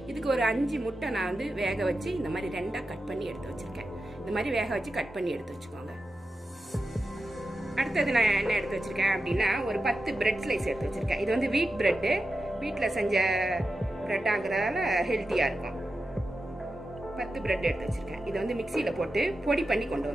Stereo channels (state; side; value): normal; both; correlation 0.91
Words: இதுக்கு ஒரு 5 முட்டை நான் வேக வச்சு இந்த மாதிரி 2ஆ கட் பண்ணி எடுத்து வச்சிருக்கேன். இந்த மாதிரி வேக வச்சு கட் பண்ணி எடுத்து வச்சுக்கோங்க. அடுத்தது நான் என்ன எடுத்து வச்சிருக்கேன் அப்படின்னா ஒரு 10 பிரெட் ஸ்லைஸ் எடுத்து வச்சிருக்கேன். இது வீட் பிரெட், வீட்டில் செஞ்ச பிரெட் ஆகுறதால ஹெல்த்தியா இருக்கும். 10 பிரெட் எடுத்து வச்சிருக்கேன். இதை மிக்சியில போட்டு பொடி பண்ணி கொண்டு